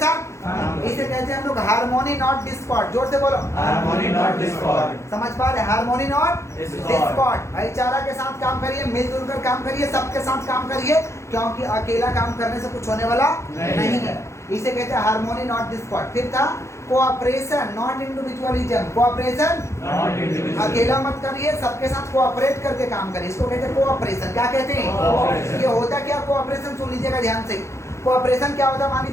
इसे कहते हैं हम लोग हार्मोनी नॉट डिस्कॉर्ड। जोर से बोलो, हार्मोनी नॉट डिस्कॉर्ड। समझ पा रहे, हार्मोनी नॉट डिस्कॉर्ड। डिस्कॉर्ड। भाईचारा के साथ काम करिए, मिलजुल कर काम करिए, सबके साथ काम करिए, क्योंकि अकेला काम करने से कुछ होने वाला नहीं है। इसे कहते हैं हार्मोनी नॉट डिस्कॉर्ड। फिर था कोऑपरेशन नॉट इंडिविजुअलिज्म। कोऑपरेशन, अकेला मत करिए, सबके साथ कोऑपरेट करके काम करिए, इसको कहते हैं कोऑपरेशन। क्या कहते हैं, ये होता क्या कोऑपरेशन, सुन लीजिएगा ध्यान से। कोऑपरेशन क्या होता है, मान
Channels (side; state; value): right; late; 0.14 ms